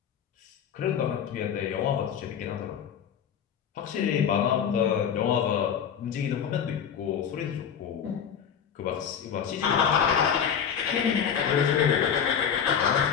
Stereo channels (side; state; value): right; quieter; 8.0 dB